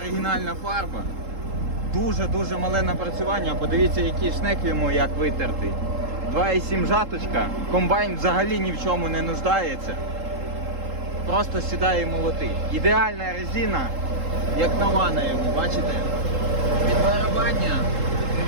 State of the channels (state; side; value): late; left; 3.8 ms